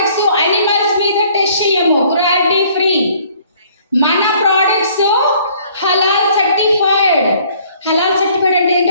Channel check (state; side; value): inverted; both; correlation -0.59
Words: అనిమల్స్ మీద టెస్ట్ చేయము, క్రుయాలిటీ ఫ్రీ. మన products halal certified. Halal certified అంటే